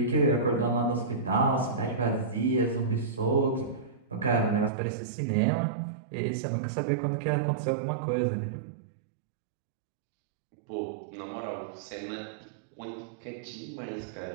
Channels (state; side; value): drops out; left; at 4.7 s